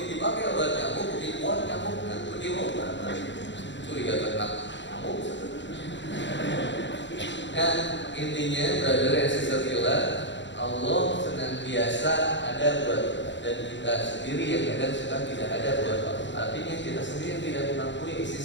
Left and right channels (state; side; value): late; right; 0.53 ms